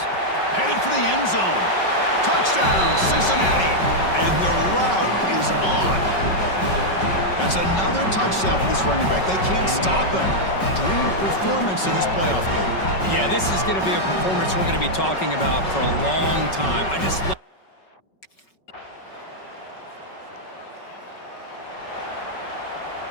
Headed for the end zone. Touchdown, Cincinnati. And the route is on. That's another touchdown for this running back. They can't stop him. Dream performance in this playoff game. Yeah, this is going to be a performance we're going to be talking about for a long time. I just love.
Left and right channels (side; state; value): right; late; 5.3 ms